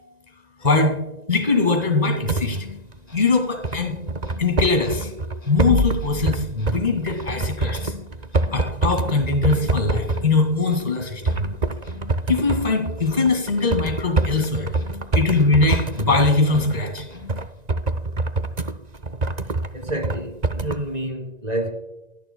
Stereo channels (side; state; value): left; late; 1.9 ms